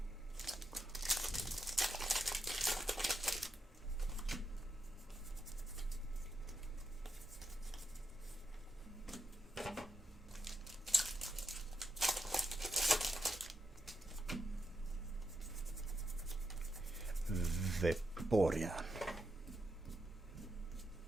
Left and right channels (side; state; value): both; normal; correlation 0.85